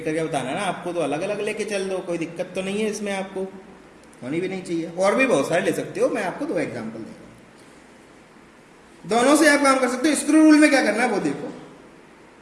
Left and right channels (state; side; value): identical; both; correlation 1.00